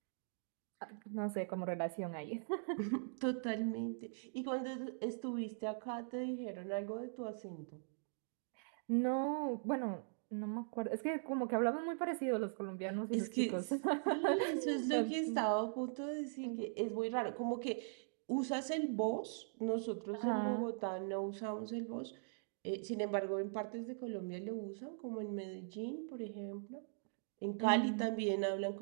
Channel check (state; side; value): silent; left; digital silence